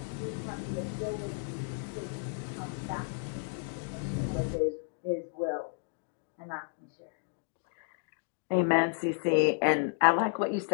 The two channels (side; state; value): right; silent; digital silence